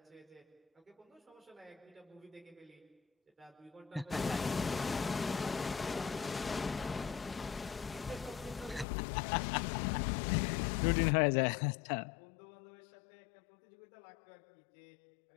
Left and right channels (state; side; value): drops out; right; at 8.8 s